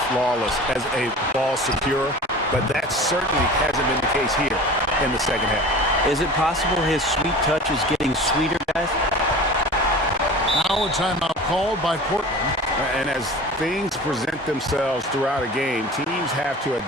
flawless as a ball securer. But that certainly hasn't been the case here in the second half. Is it possible his sweet touch is getting sweeter, guys? Now a timeout called by Portland. And as things present themselves throughout a game, teams have to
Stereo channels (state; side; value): normal; both; correlation 0.38